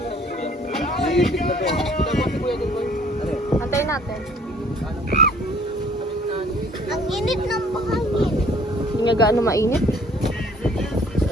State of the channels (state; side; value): normal; both; correlation 0.57